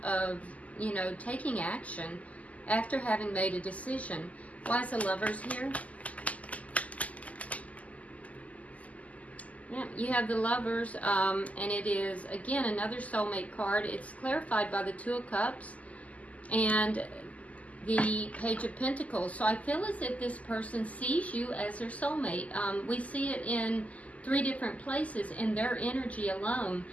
of you know, taking action after having made a decision. Why is the Lovers here? Yeah, you have the Lovers, and it is, again, another soulmate card. It's clarified by the Two of Cups and the Page of Pentacles. So I feel as if this person sees you as their soulmate. We see it in 3 different places in their energy alone.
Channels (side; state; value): right; late; 0.072 ms